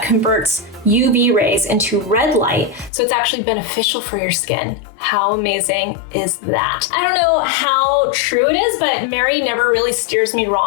converts UV rays into red light. So it's actually beneficial for your skin. How amazing is that? I don't know how true it is, but Mary never really steers me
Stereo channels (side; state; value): right; drops out; at 2.9 s